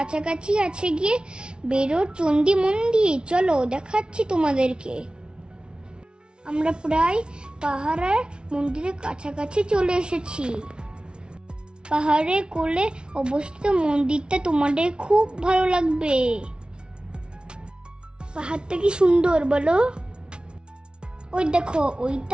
আছে গিয়ে বেরোর চণ্ডী মন্দির। চলো দেখাচ্ছি তোমাদেরকে। আমরা প্রায় পাহাড়ের মন্দিরের কাছাকাছি চলে এসেছি। পাহাড়ের কোলে অবস্থিত মন্দিরটা তোমাদের খুব ভালো লাগবে। পাহাড়টা কি সুন্দর বলো? ওই দেখো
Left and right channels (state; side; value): late; left; 0.055 ms